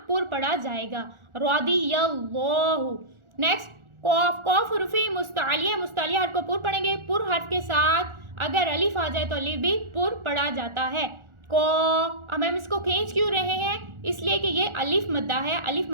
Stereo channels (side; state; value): left; late; 1.4 ms